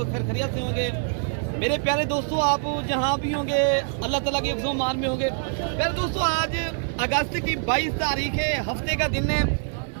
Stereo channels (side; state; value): left; silent; digital silence